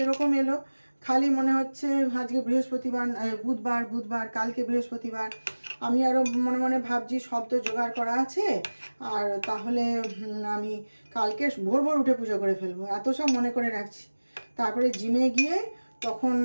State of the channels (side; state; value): both; inverted; correlation -1.00